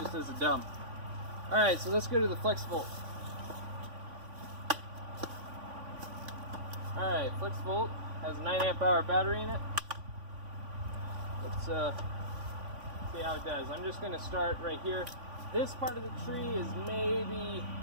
as a dump. Alright, so let's go to the Flexvolt. Alright, Flexvolt has a 9-amp-hour battery in it. Let's see how it does. I'm just going to start right here. This part of the tree is maybe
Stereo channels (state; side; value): late; left; 3.5 ms